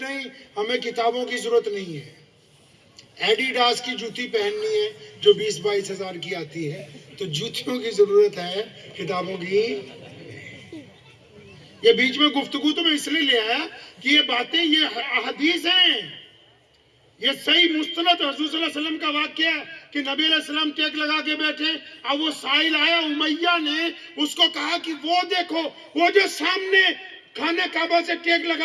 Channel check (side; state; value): both; identical; correlation 1.00